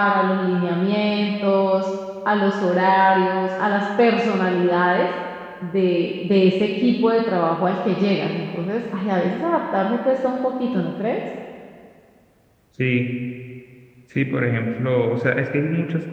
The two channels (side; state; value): both; identical; correlation 1.00